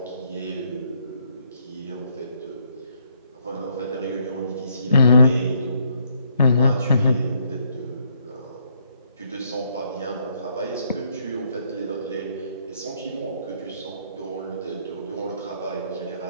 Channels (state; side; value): inverted; both; correlation -0.70